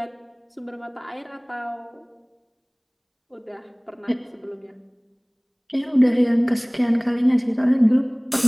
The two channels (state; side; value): identical; both; correlation 1.00